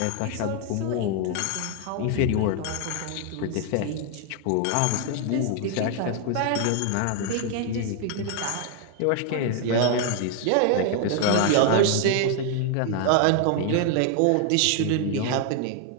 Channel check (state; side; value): different; both; correlation 0.00